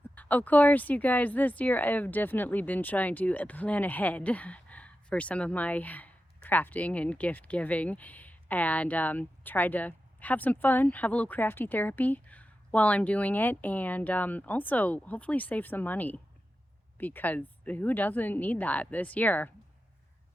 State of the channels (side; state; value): both; normal; correlation 0.91